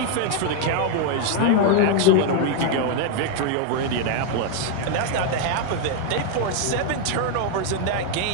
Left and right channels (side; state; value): both; different; correlation 0.01